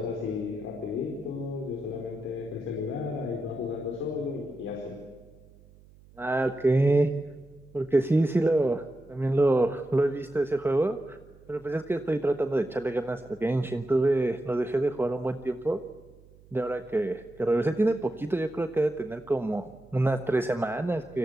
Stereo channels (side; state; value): right; noise; hum, 25 dB below the sound